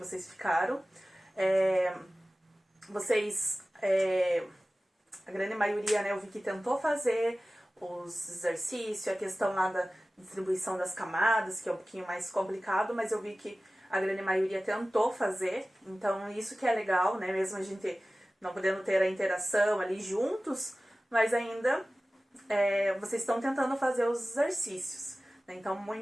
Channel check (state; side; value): normal; both; correlation 0.97